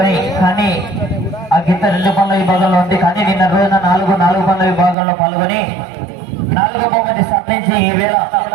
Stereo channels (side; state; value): left; drops out; at 5.0 s